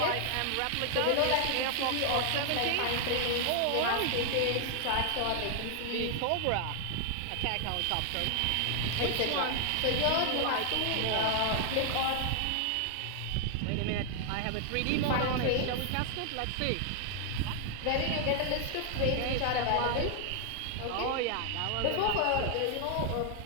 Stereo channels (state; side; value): different; both; correlation 0.00